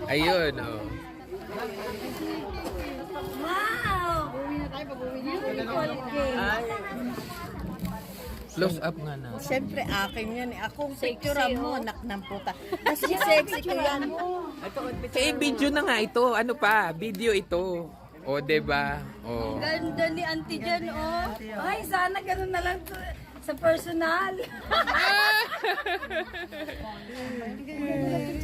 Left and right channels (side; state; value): both; identical; correlation 1.00